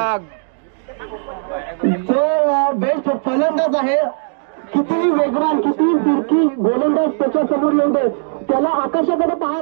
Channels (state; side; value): silent; left; digital silence